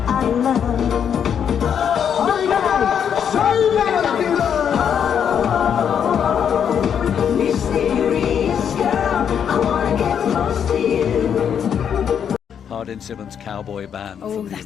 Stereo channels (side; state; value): right; quieter; 8.1 dB